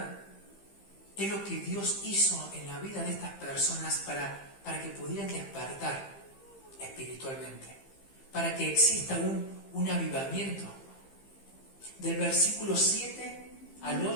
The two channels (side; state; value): right; late; 15 ms